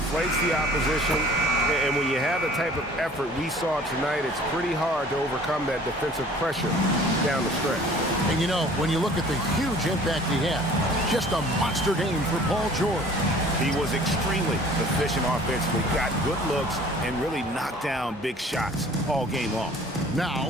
the opposition, and when you have the type of effort we saw tonight, it's pretty hard to overcome that defensive pressure down the stretch. And you know, when you look at the huge impact he had, just a monster game for Paul George. He was extremely efficient offensively, got good looks, and really knocked down big shots all game long.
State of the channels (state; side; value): normal; both; correlation 0.50